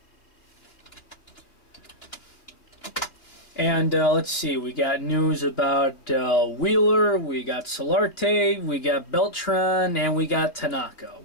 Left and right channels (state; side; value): late; right; 2.9 ms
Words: And let's see, we got news about Wheeler, we got Solarte, we got Beltran, and we got Tanaka.